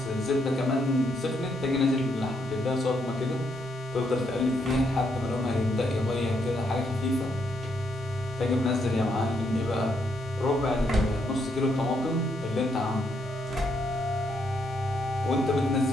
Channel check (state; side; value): normal; both; correlation 0.76